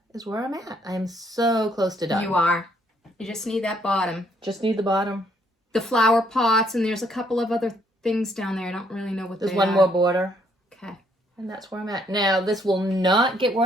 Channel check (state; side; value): normal; both; correlation 0.69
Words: is where I'm at. I'm so close to done. You are. You just need that bottom. Just need the bottom. The flower pots, and there's a couple of other things down there. I don't really know what There's they one are. more border. Okay. And that's where I'm at. Now, this will not get